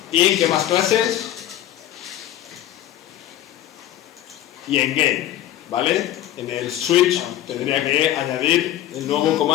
y ¿en qué más clases? Y en game, ¿vale? En el switch tendría que añadir el nuevo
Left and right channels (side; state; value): right; quieter; 12.9 dB